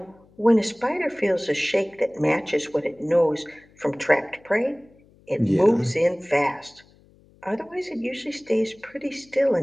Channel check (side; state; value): left; noise; hum, 29 dB below the sound